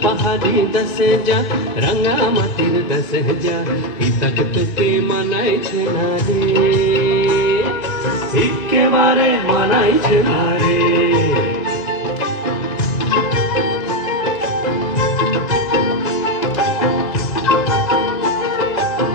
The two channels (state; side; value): late; right; 1.9 ms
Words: পাহাড়ি দশে যা রঙা মাটির দশে যা ইতক তোকে মানাইছে না রে একেবারে মানাইছে না রে